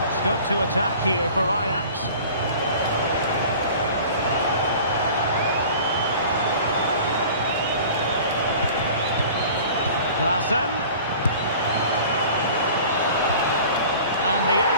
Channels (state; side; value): inverted; both; correlation -0.44